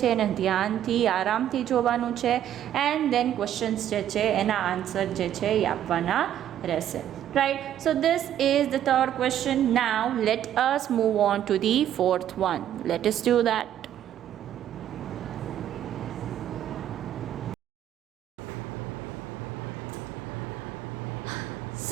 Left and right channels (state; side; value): quieter; left; 11.0 dB